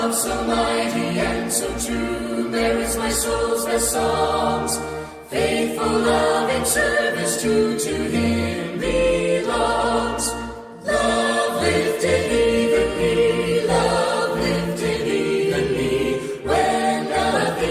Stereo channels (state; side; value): identical; both; correlation 1.00